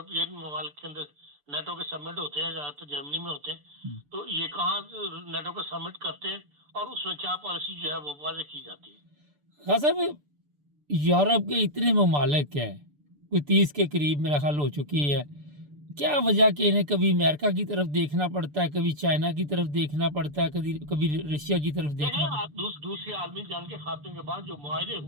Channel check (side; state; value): left; late; 6.8 ms